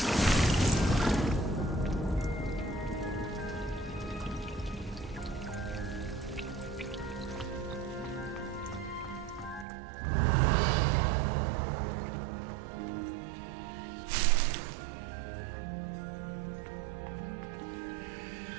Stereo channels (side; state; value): left; drops out; at 9.7 s